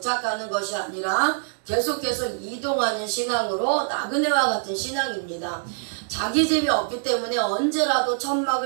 것이 아니라 계속해서 이동하는 신앙으로 나그네와 같은 신앙입니다. 자기 집이 없기 때문에 언제라도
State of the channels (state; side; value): silent; left; digital silence